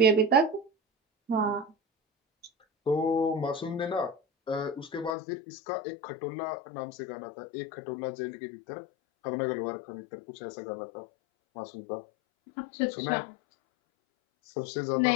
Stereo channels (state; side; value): drops out; right; at 5.2 s